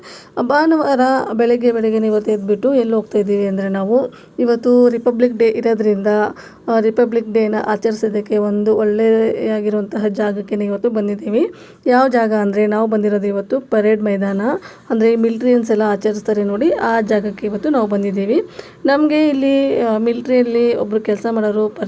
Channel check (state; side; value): identical; both; correlation 1.00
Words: ಭಾನುವಾರ ಬೆಳಗ್ಗೆ ಇವತ್ತು ಎದ್ಬಿಟ್ಟು ಎಲ್ಲಿ ಹೋಗ್ತಾ ಇದ್ದೀವಿ ಅಂದರೆ, ನಾವು ಇವತ್ತು ರಿಪಬ್ಲಿಕ್ ಡೇ ಇರೋದ್ರಿಂದ ರಿಪಬ್ಲಿಕ್ ಡೇನ ಆಚರಿಸೋದಕ್ಕೆ ಒಂದು ಒಳ್ಳೆಯಾಗಿರುವಂತಹ ಜಾಗಕ್ಕೆ ಇವತ್ತು ಬಂದಿದ್ದೀವಿ. ಯಾವ ಜಾಗ ಅಂದರೆ, ನಾವು ಬಂದಿರೋದು ಇವತ್ತು ಪರೇಡ್ ಮೈದಾನ, ಅಂದರೆ ಮಿಲ್ಟ್ರಿಯನ್ಸ್ ಎಲ್ಲ ಆಚರಿಸ್ತಾರೆ ನೋಡಿ, ಆ ಜಾಗಕ್ಕೆ ಇವತ್ತು ನಾವು ಬಂದಿದ್ದೀವಿ. ನಮಗೆ ಇಲ್ಲಿ ಮಿಲ್ಟ್ರಿಯಲ್ಲಿ ಒಬ್ಬರು ಕೆಲಸ ಮಾಡೋರು